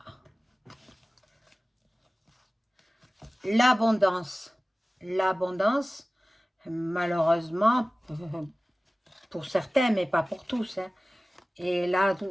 l'abondance. L'abondance, malheureusement, pour certains, mais pas pour tous. Hein. Et là,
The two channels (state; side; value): normal; both; correlation 0.97